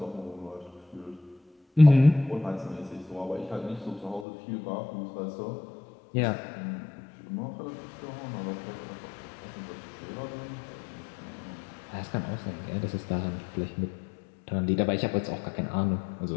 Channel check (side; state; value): right; drops out; at 4.2 s